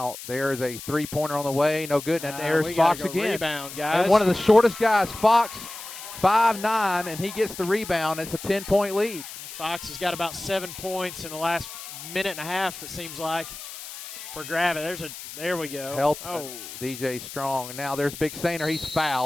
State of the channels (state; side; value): noise; left; hiss, 12 dB below the sound